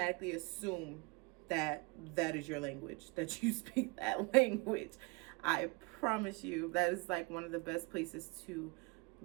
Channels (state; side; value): quieter; left; 27.9 dB